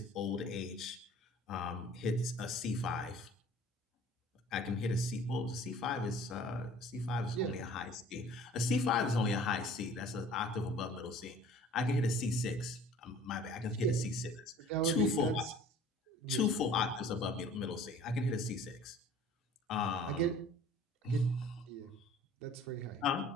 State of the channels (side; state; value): both; normal; correlation 0.49